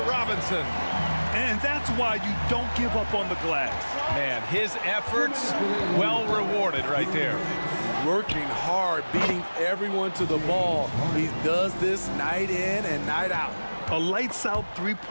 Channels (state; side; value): inverted; both; correlation -1.00